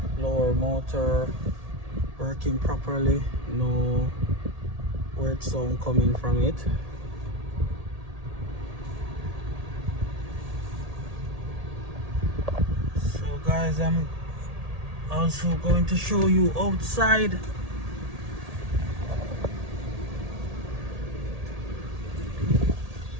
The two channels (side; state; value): left; late; 1.8 ms